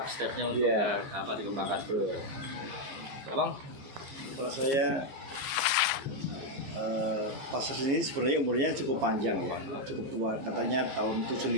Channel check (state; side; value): late; left; 14 ms